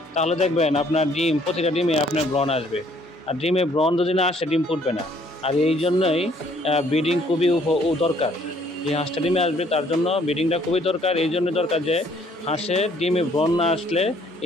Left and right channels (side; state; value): both; normal; correlation 0.63